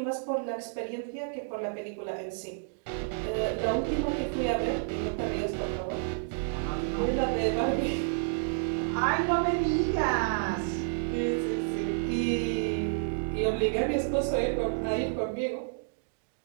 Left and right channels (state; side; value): silent; left; digital silence